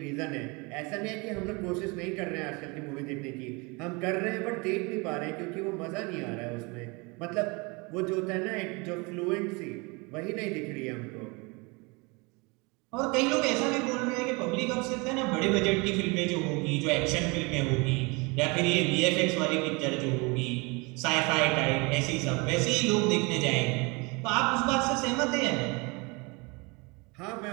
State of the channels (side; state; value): left; quieter; 27.9 dB